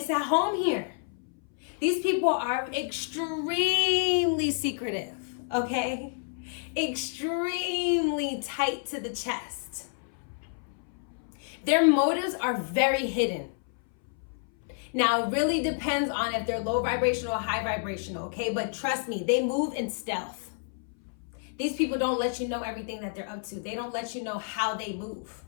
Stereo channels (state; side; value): silent; right; 58 dB below the other